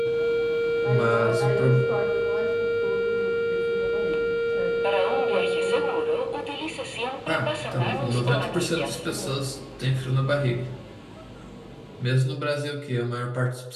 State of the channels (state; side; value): identical; both; correlation 1.00